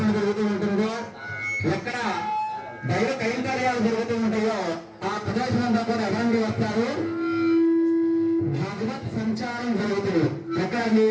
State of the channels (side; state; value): both; identical; correlation 1.00